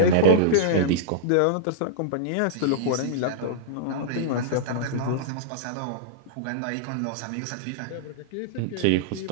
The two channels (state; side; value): different; both; correlation -0.02